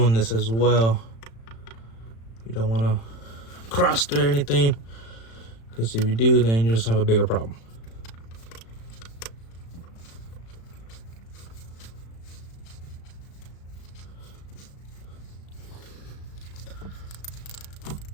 this as well. You don't want to cross through anything, because if you do, then you just have a bigger problem.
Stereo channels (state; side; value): late; right; 35 ms